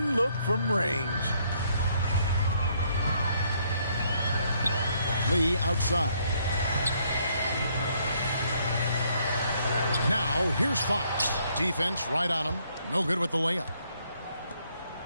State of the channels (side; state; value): both; inverted; correlation -0.69